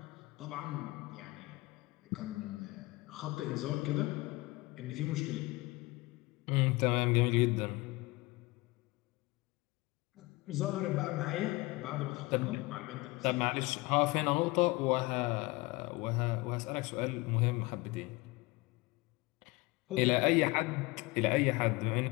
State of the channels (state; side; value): quieter; right; 22.6 dB